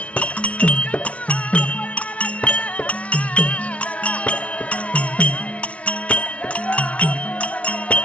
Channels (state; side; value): late; right; 0.063 ms